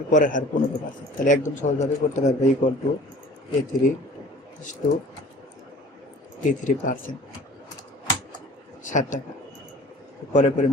করের হার 15%। তাহলে একদম সহজভাবে করতে পারবে, equal to A3 two B3%, 60 টাকা, করের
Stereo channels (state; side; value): normal; both; correlation 0.46